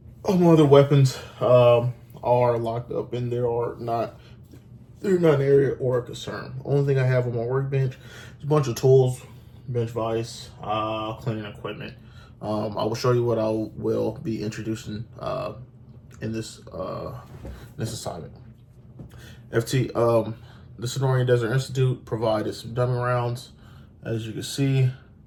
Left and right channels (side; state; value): both; identical; correlation 1.00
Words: All my other weapons are locked up and they're not an area or a concern. Only thing I have on my workbench is a bunch of tools, bench vise, cleaning equipment. I will show you what I will be introducing in this assignment. The Sonoran Desert Institute provided some dummy rounds. As you can see,